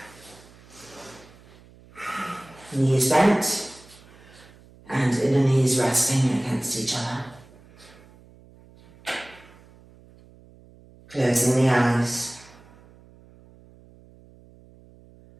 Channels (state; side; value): noise; right; hum, 25 dB below the sound